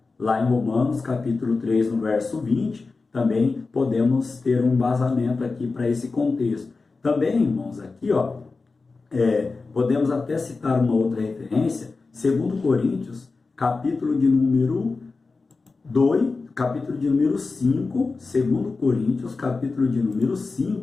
Lá em Romanos, capítulo 3, no verso 20, também podemos ter um embasamento aqui para esse contexto. Também, irmãos, aqui, podemos até citar uma outra referência, 2 Coríntios, capítulo de número 5, 2 Coríntios, capítulo de número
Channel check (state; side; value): quieter; right; 4.0 dB